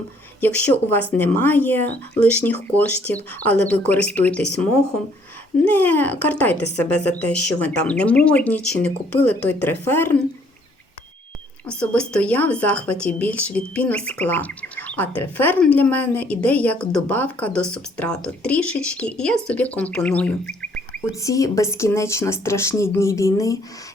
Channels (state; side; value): normal; both; correlation 0.64